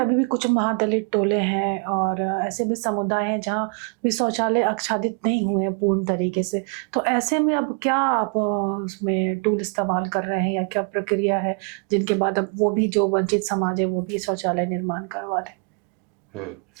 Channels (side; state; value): left; quieter; 36.9 dB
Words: भी कुछ महादलित टोले हैं और ऐसे भी समुदाय हैं जहाँ भी शौचालय आच्छादित नहीं हुए हैं पूर्ण तरीके से। तो ऐसे में अब क्या आप उसमें टूल इस्तेमाल कर रहे हैं, या क्या प्रक्रिया है जिनके बाद अब वो भी जो वंचित समाज है वो भी शौचालय निर्माण करवा रहे?